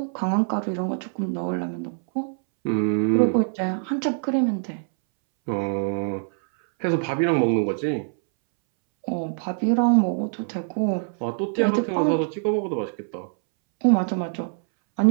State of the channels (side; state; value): left; silent; 63 dB below the other